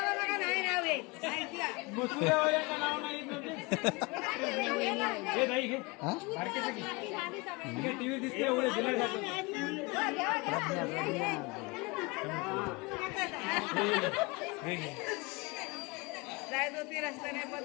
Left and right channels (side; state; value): right; quieter; 26.3 dB